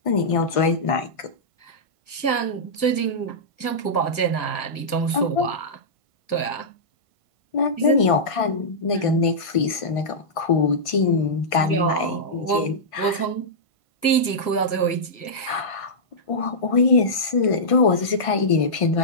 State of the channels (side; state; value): right; late; 1.4 ms